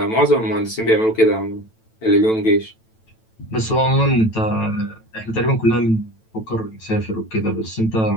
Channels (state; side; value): late; right; 9.0 ms